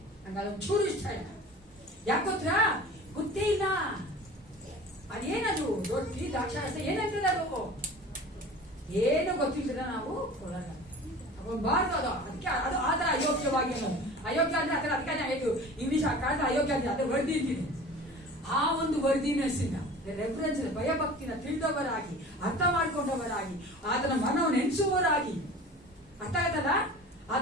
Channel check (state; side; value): normal; both; correlation 0.40